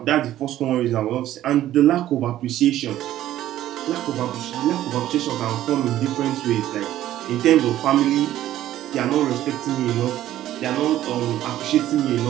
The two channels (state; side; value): quieter; left; 13.2 dB